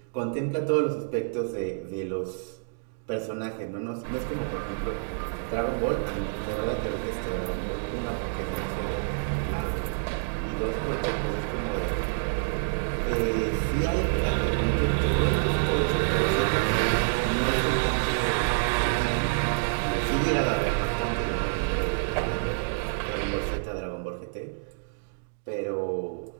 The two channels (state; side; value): silent; left; digital silence